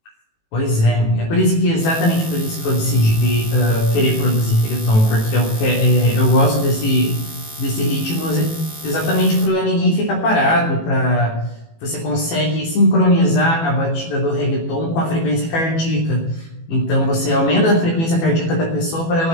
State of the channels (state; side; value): late; right; 18 ms